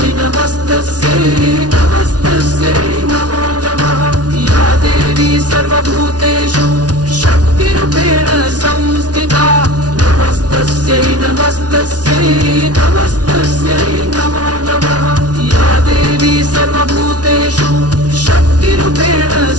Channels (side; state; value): left; late; 0.69 ms